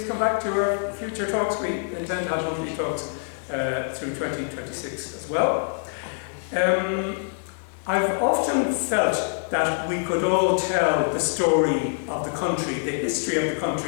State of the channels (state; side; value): silent; right; 62 dB below the other